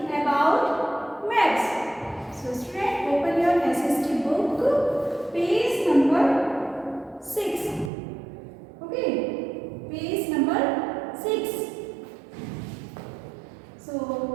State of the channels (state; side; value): drops out; left; at 7.9 s